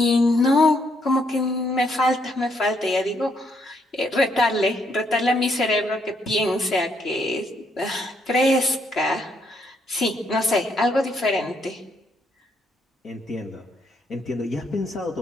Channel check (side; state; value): both; normal; correlation 0.73